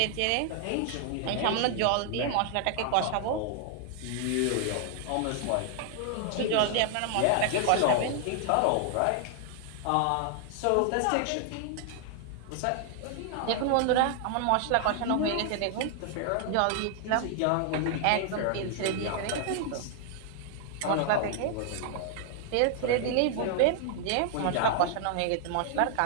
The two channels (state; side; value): different; both; correlation 0.00